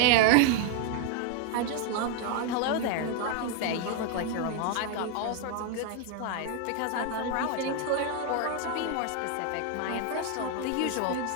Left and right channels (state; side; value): different; both; correlation 0.00